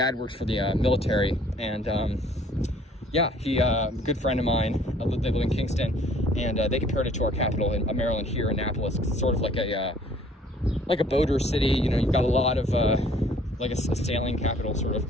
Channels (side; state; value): both; normal; correlation 0.58